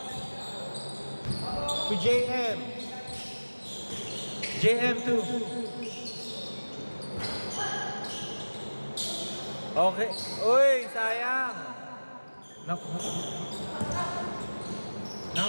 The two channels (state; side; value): inverted; both; correlation -1.00